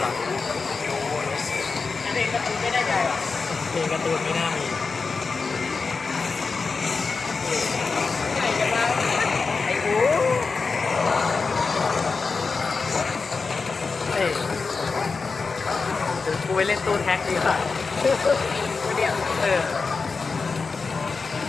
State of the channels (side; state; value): right; quieter; 4.5 dB